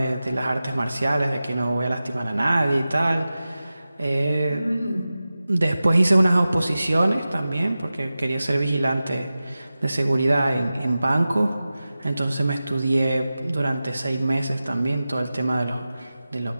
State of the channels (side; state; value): both; inverted; correlation -0.95